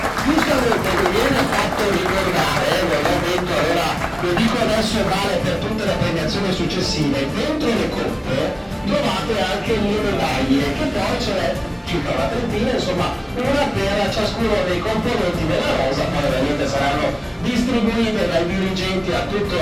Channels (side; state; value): both; identical; correlation 1.00